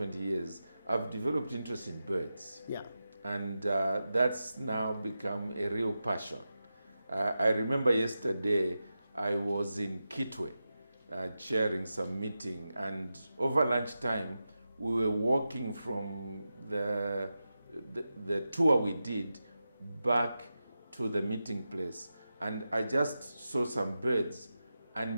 years, I've developed interest in birds. Yeah. And that's now become a real passion. I remember yesterday I was in Kitwe chairing some meeting, and over lunchtime we were walking from the tour we did back to the meeting place, and I just saw some birds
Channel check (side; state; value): both; inverted; correlation -0.91